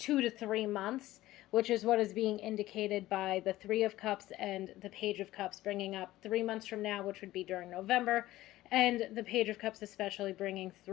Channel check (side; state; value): right; quieter; 16.1 dB